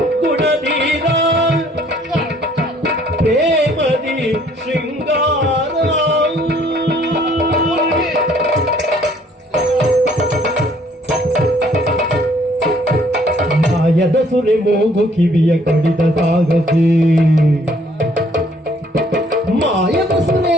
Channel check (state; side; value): normal; both; correlation 0.61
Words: ಗುಣಧೀರ ಪ್ರೇಮದಿ ಶೃಂಗಾರ ಮಾಯದ ಸುರೆ ಮೂಗು ಕಿವಿಯ ಕಡಿದ ಸಾಗಸಿ ಮಾಯದ ಸುರೆ